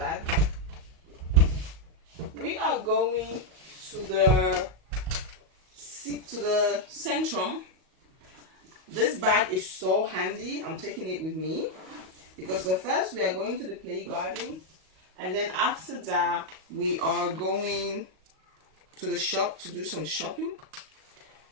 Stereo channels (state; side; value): late; left; 38 ms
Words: We are going to the Centrum. This bag is so handy. I'm taking it with me because first we are going to the play garden, and then after that we are going to the shop to do some shopping.